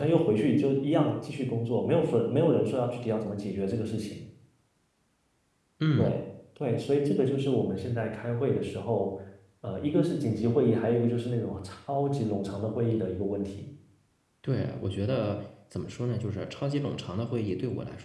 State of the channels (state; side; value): identical; both; correlation 1.00